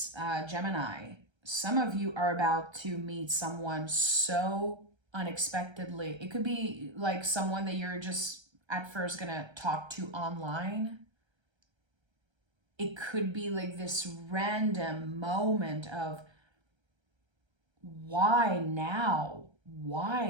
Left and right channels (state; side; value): late; left; 1.3 ms